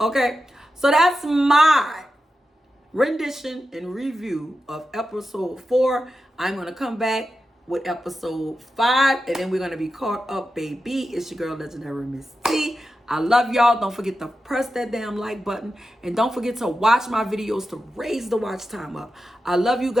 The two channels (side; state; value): both; normal; correlation 0.91